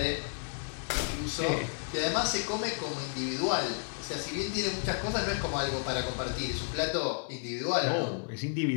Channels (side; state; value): right; silent; digital silence